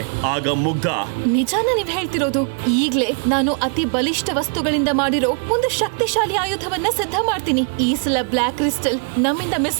ಆಗ ಮುಗ್ಧ, ನಿಜಾನ ನೀವ್ ಹೇಳ್ತಿರೋದು? ಈಗ್ಲೇ ನಾನು ಅತಿ ಬಲಿಷ್ಠ ವಸ್ತುಗಳಿಂದ ಮಾಡಿರೋ ಒಂದು ಶಕ್ತಿಶಾಲಿ ಆಯುಧವನ್ನ ಸಿದ್ಧ ಮಾಡ್ತೀನಿ. ಈ ಸಲ ಬ್ಲಾಕ್ ಕ್ರಿಸ್ಟಲ್ ನಮ್ಮಿಂದ ಮಿಸ್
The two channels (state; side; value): quieter; left; 36.8 dB